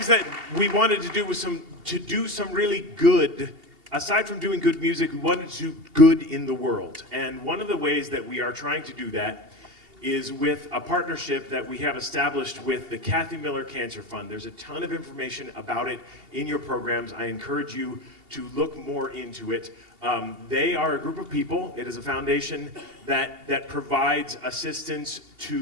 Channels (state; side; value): late; left; 2.8 ms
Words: that we wanted to do was to do some really good, aside from doing good music, we wanted to do good in the world. And one of the ways that we are trying to do that is with a partnership that we have established with the Kathy Miller Cancer Fund. There's a ton of information about it in your programs. I encourage you to look more into it. They are a group of people. It is a foundation that provides assistance to